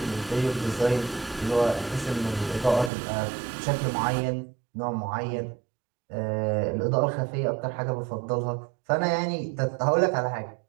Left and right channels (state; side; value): drops out; left; at 2.9 s